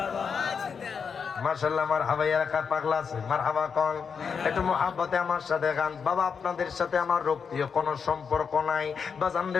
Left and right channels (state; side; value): quieter; right; 6.2 dB